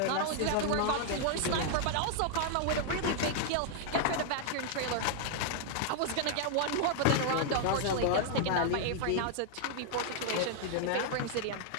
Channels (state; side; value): different; both; correlation 0.00